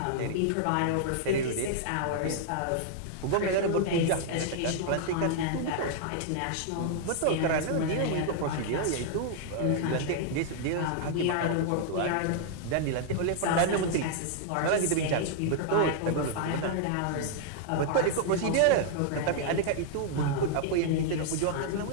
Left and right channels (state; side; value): different; both; correlation -0.01